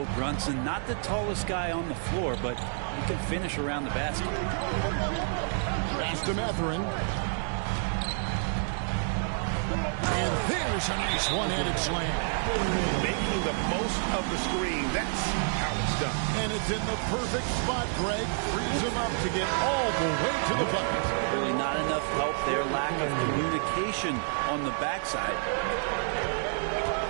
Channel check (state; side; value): silent; left; 59 dB below the other